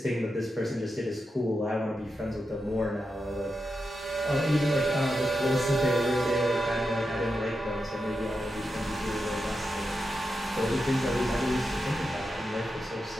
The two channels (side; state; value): both; normal; correlation 0.88